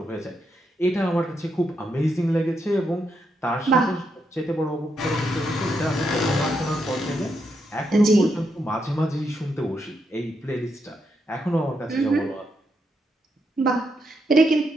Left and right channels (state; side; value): normal; both; correlation 0.81